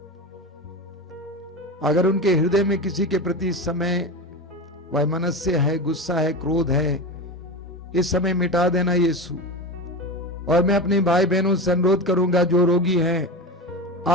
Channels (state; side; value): normal; both; correlation 0.24